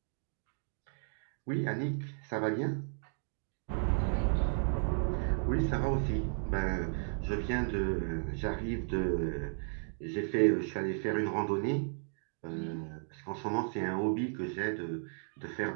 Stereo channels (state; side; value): silent; left; 55 dB below the other